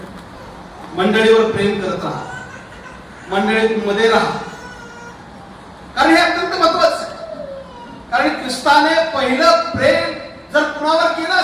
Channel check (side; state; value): both; identical; correlation 1.00